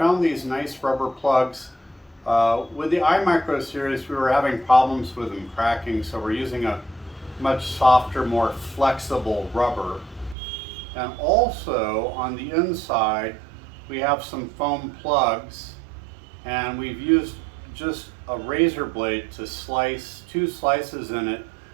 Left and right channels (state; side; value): drops out; left; at 10.4 s